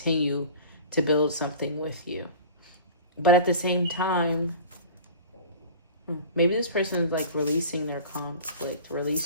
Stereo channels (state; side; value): inverted; both; correlation -0.39